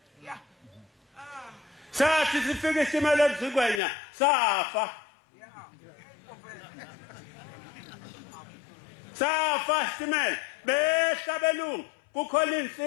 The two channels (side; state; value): right; drops out; at 3.8 s